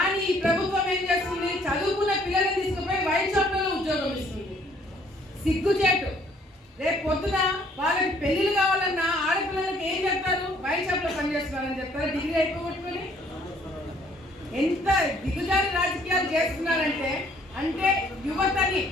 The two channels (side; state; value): both; normal; correlation 0.62